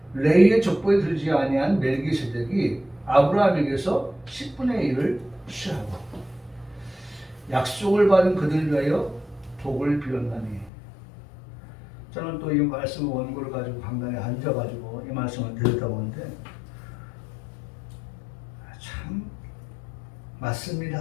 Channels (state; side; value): drops out; right; at 10.7 s